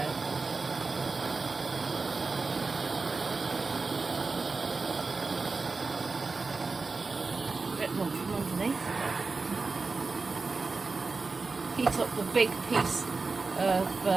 A bit more from underneath. Heat up the big piece of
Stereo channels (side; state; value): left; quieter; 4.1 dB